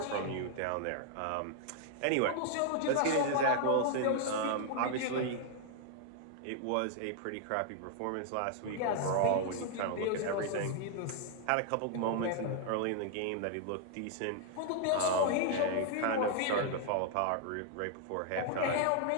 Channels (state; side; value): different; both; correlation 0.00